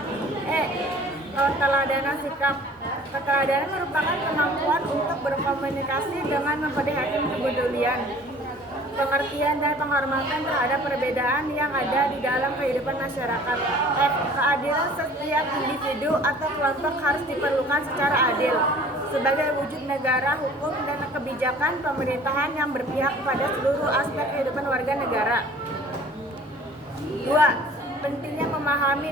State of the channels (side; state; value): both; normal; correlation 0.49